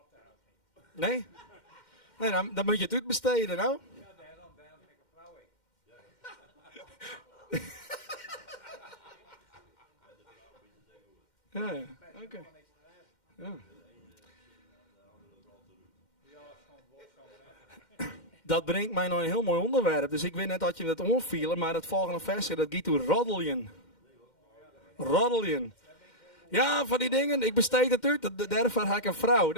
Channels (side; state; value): right; late; 2.1 ms